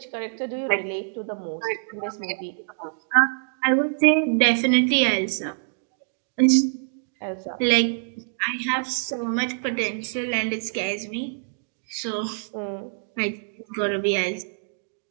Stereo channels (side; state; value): left; silent; digital silence